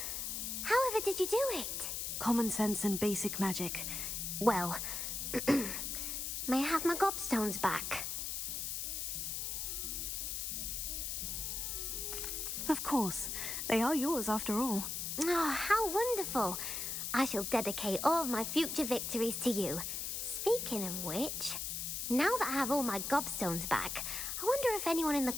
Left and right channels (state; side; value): noise; left; hiss, 3 dB below the sound